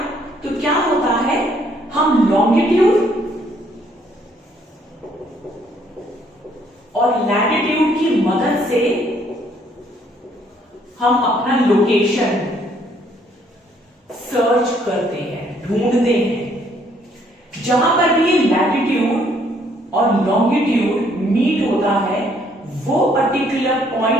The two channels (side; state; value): both; normal; correlation 0.66